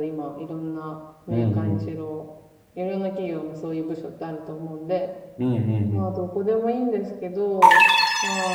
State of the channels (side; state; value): both; identical; correlation 1.00